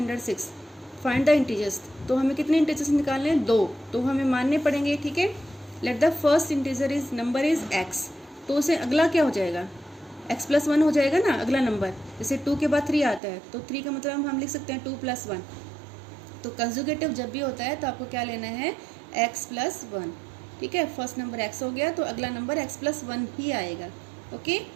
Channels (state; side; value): drops out; left; at 13.2 s